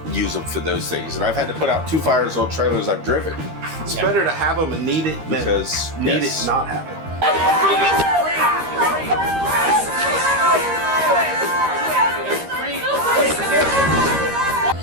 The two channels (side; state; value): left; late; 13 ms